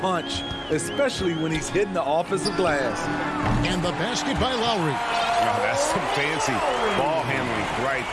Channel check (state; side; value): identical; both; correlation 1.00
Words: punch, especially when he's hitting the offensive glass. And the basket by Lowry. Oh, that's some fancy ball handling right